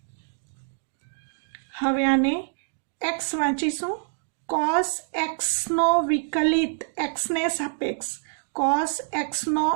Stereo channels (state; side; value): silent; left; digital silence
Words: हवे आने x वांचीशुं cos x नो विकलित x ने सापेक्ष cos x नो